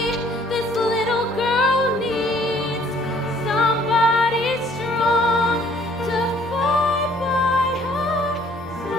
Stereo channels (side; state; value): both; normal; correlation 0.60